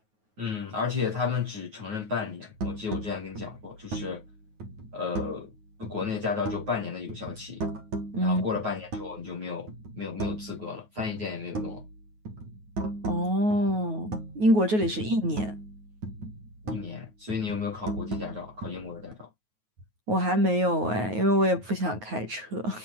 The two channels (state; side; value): late; left; 9.4 ms